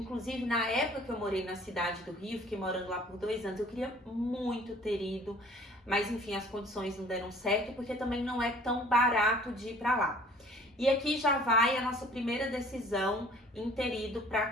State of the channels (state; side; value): normal; both; correlation 0.52